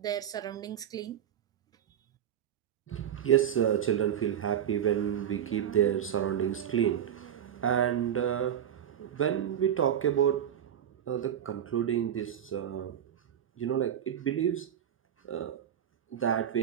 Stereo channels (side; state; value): left; quieter; 9.8 dB